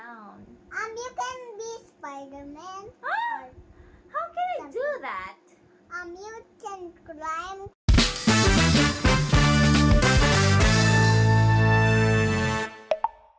You can be Spider-Man. Ah! How can I do that? You can climb.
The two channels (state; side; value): identical; both; correlation 1.00